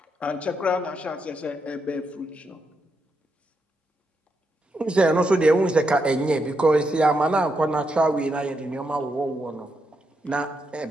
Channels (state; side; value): normal; both; correlation 0.82